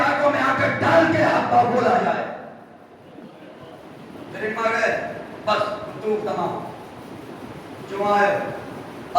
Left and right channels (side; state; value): both; identical; correlation 1.00